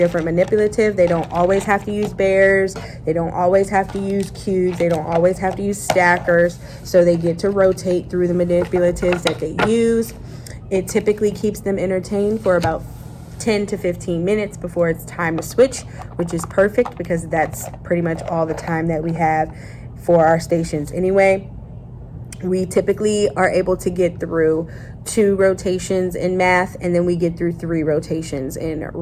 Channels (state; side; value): identical; both; correlation 1.00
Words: manipulative. They don't always have to use bears, they don't always have to use cubes, they don't always have to use stackers. So they get to rotate through the manipulatives that they use. It typically keeps them entertained for about 10 to 15 minutes before it's time to switch, which is perfect because that's pretty much all the time that we have for our stations anyway. We typically are able to get through 2 rotations in math, and then we get through 3 rotations in